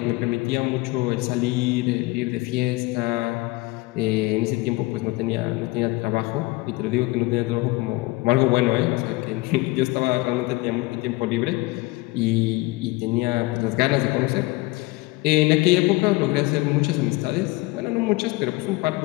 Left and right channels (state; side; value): quieter; right; 22.1 dB